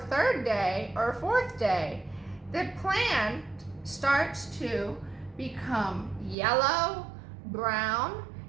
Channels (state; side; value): drops out; left; at 6.4 s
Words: day or fourth day, the plant starts to become yellow, brown,